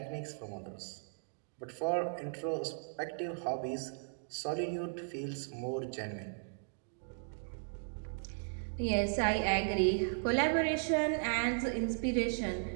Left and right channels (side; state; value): left; silent; digital silence